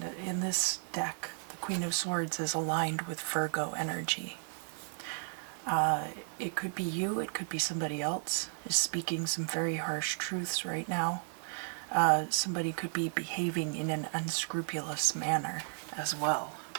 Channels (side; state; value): left; silent; 55 dB below the other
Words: in this deck, the Queen of Swords is aligned with Virgo energy. It could be you, it could be somebody else is speaking some very harsh truths right now. Somebody could be behaving in an unscrupulous manner as well.